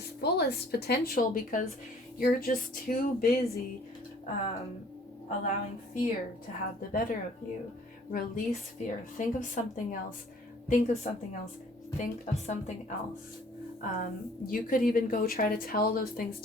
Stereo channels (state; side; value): normal; both; correlation 0.56